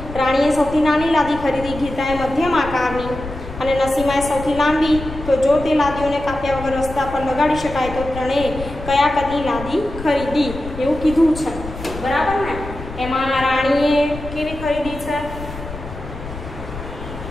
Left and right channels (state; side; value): noise; left; rumble, 11 dB below the sound